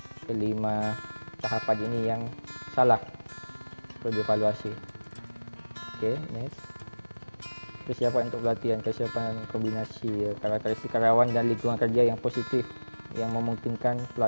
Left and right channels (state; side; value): inverted; both; correlation -1.00